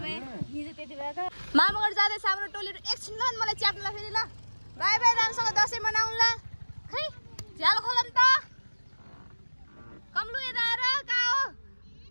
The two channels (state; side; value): inverted; both; correlation -1.00